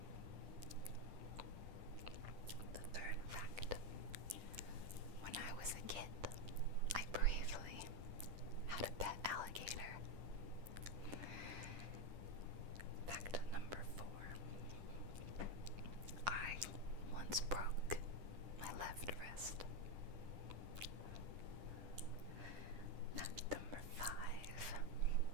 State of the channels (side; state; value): left; late; 10 ms